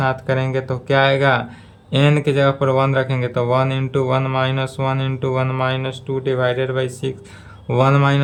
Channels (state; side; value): identical; both; correlation 1.00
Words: करेंगे तो क्या आएगा, n के जगह पर 1 रखेंगे तो 1 into 1 minus 1 into 1 minus 2 divided by 6। 1